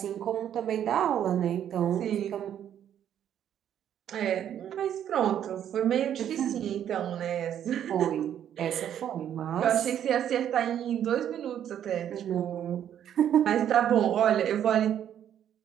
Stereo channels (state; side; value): quieter; left; 10.0 dB